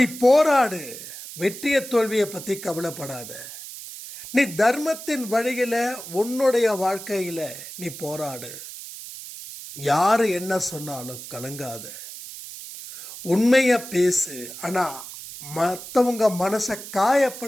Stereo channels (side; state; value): right; noise; hiss, 12 dB below the sound